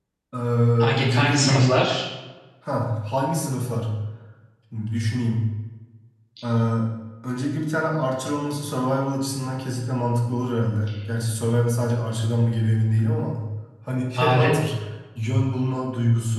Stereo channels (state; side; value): identical; both; correlation 1.00